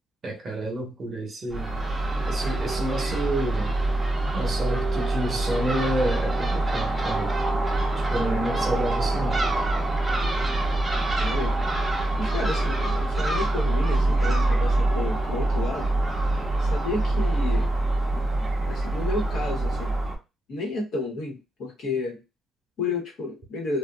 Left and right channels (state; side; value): normal; both; correlation 0.86